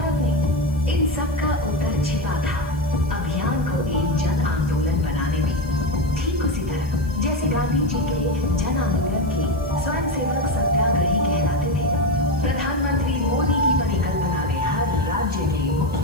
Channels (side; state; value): left; noise; hiss, 26 dB below the sound